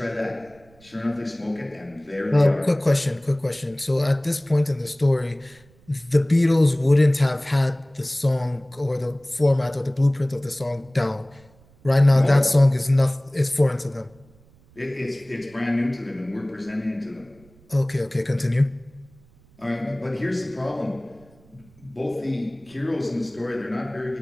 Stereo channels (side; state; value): right; noise; rumble, 29 dB below the sound